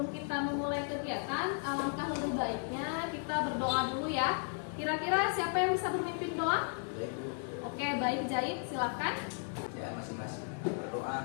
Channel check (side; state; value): right; silent; 54 dB below the other